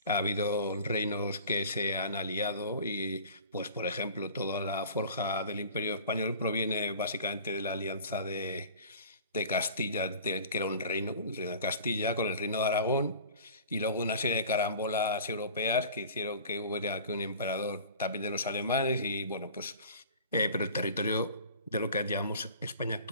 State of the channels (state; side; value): inverted; both; correlation -0.42